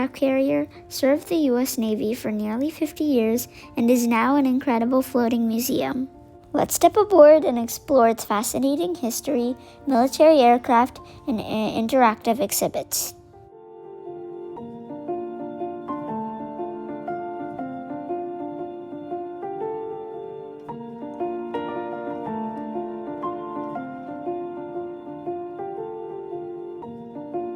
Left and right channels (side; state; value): both; identical; correlation 1.00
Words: carrier served the US Navy for nearly 50 years and is now an incredible floating museum. Let's step aboard and explore its fascinating history, military aircraft, and interactive exhibits.